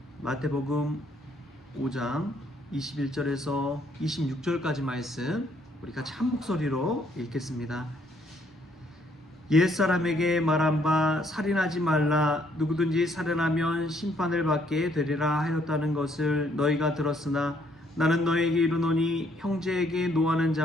마태복음 5장 21절에서 26절까지 말씀 우리 같이 한 목소리로 읽겠습니다. 옛사람에게 말한 바 살인하지 말라, 누구든지 살인하면 심판을 받게 되리라 하였다는 것을 너희가 들었으나 나는 너희에게 이르노니 형제에게 노하는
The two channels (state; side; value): normal; both; correlation 0.68